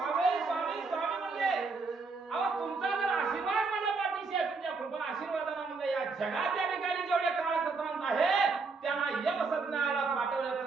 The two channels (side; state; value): left; quieter; 4.2 dB